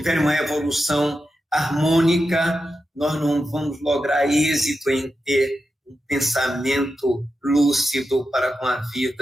uma evolução harmônica, nós não vamos lograr êxito em ter um pensamento lúcido para com a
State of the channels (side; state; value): both; normal; correlation 0.89